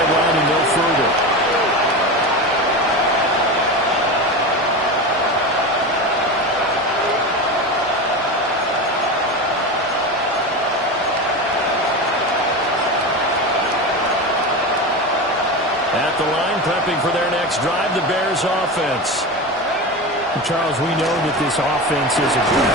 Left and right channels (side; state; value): both; normal; correlation 0.23